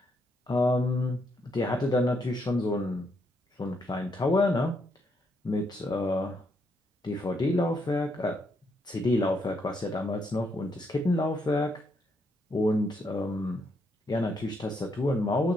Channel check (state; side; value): normal; both; correlation 0.76